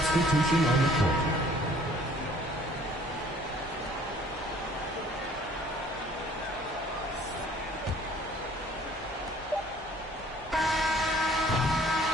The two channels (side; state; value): both; normal; correlation 0.56